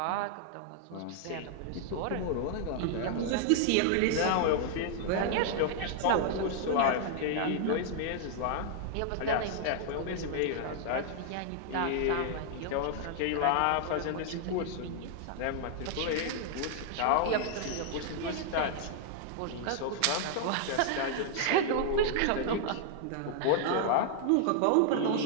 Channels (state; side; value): different; both; correlation -0.01